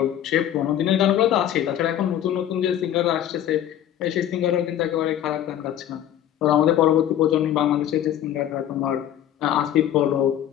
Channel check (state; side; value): quieter; right; 11.1 dB